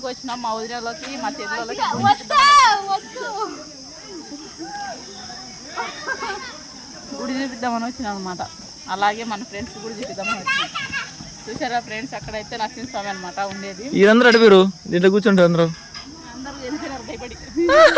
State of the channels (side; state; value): both; identical; correlation 1.00